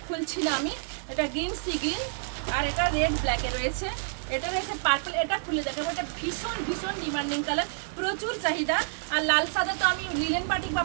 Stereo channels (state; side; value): silent; left; digital silence